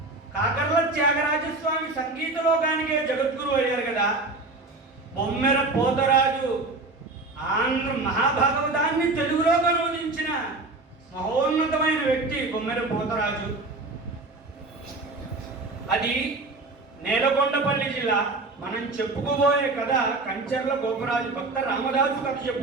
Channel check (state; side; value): quieter; left; 3.2 dB